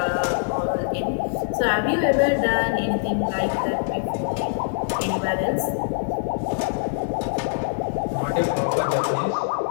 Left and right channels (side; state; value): right; silent; digital silence